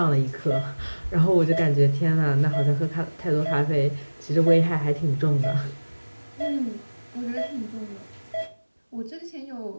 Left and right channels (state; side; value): inverted; both; correlation -1.00